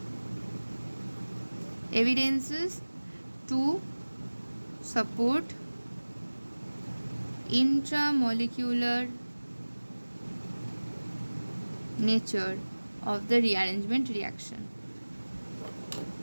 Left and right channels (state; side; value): inverted; both; correlation -1.00